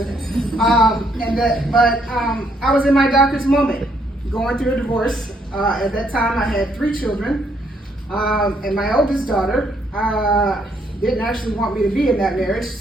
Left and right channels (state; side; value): normal; both; correlation 0.71